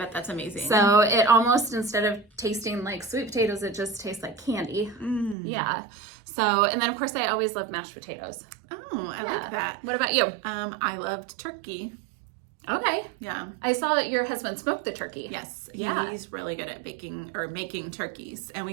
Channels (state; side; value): drops out; left; at 5.4 s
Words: that's amazing. So it almost, instead of tasting like sweet potatoes, it just tastes like candy. Yeah. So, and then of course I always love mashed potatoes. Oh, I like that. What about you? I loved turkey. Okay. Yeah. I saw that your husband smoked the turkey. Yes. Yeah. He's really good at baking or making turkeys. And